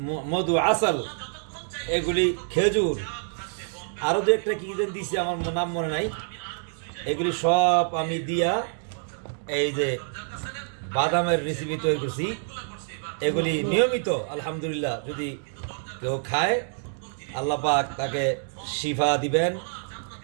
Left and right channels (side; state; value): left; silent; digital silence